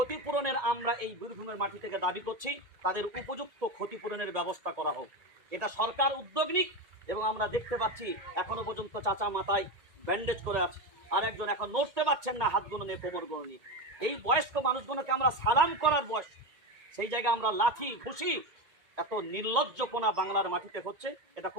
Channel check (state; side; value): late; left; 1.9 ms